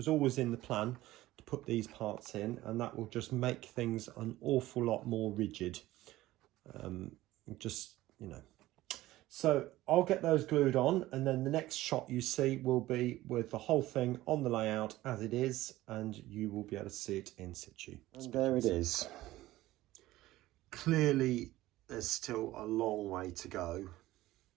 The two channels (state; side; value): quieter; left; 16.5 dB